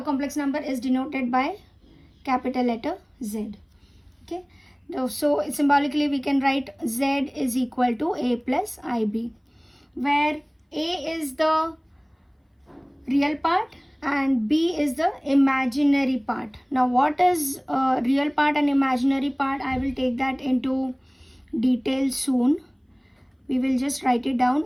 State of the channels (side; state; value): both; identical; correlation 1.00